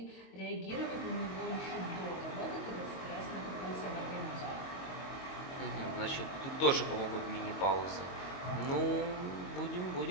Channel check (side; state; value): right; late; 22 ms